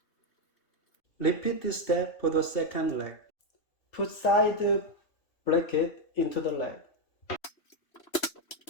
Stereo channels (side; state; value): right; late; 3.0 ms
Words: Repeat this step for the second leg. Put side bracket into the leg.